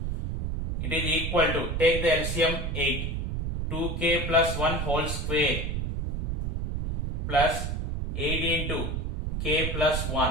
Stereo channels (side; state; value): right; noise; rumble, 2 dB below the sound